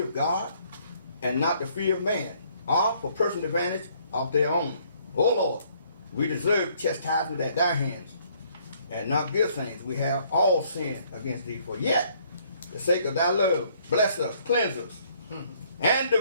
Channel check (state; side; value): inverted; both; correlation -0.64